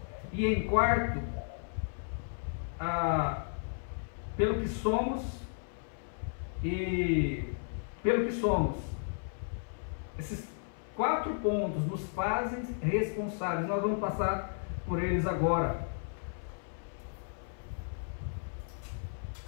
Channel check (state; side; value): silent; right; 55 dB below the other